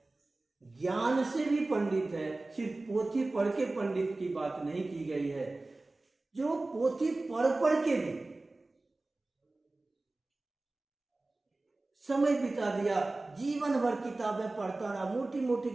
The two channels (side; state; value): left; quieter; 3.1 dB